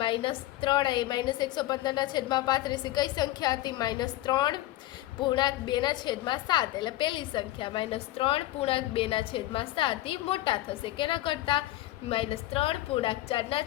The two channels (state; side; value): quieter; right; 16.2 dB